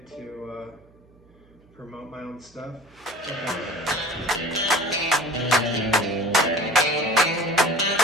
to promote my own stuff.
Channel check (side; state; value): right; noise; hum, 29 dB below the sound